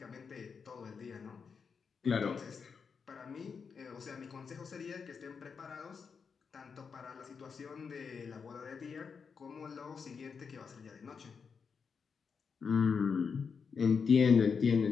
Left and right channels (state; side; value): quieter; right; 5.8 dB